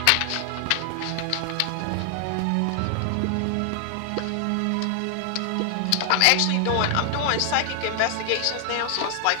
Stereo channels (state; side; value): different; both; correlation 0.00